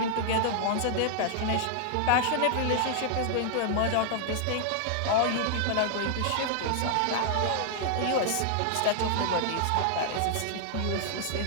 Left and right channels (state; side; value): different; both; correlation 0.00